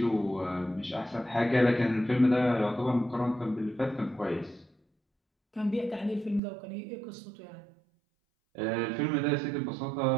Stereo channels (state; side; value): drops out; left; at 6.4 s